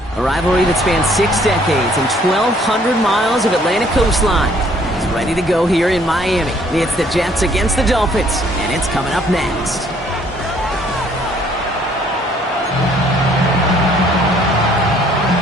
A rivalry that spans 6 decades and 1,200 miles of Atlantic coastline is ready to go here in Miami. It's the Jets against the Dolphins, and it's coming up next.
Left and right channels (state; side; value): normal; both; correlation 0.62